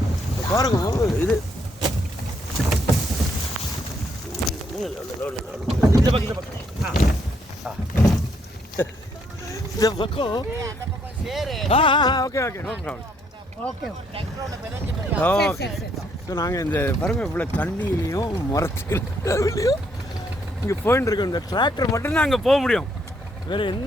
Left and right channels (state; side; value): normal; both; correlation 0.72